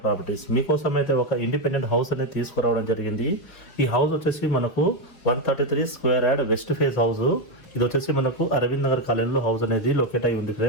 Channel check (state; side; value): late; right; 4.7 ms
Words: ప్రాపర్టీస్. మీకోసం అయితే ఒక ఇండిపెండెంట్ హౌస్ అనేది తీసుకురావడం జరిగింది. ఈ హౌస్ వచ్చేసి మనకు 133 square yard west face house. ఇది వచ్చేసి మనకు అరవింద్ నగర్ కాలనీలో హౌస్ అనేది లొకేట్ అయి ఉంది